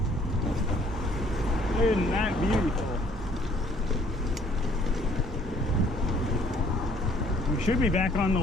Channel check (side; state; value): both; normal; correlation 0.60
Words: Isn't that beautiful? We should be back on the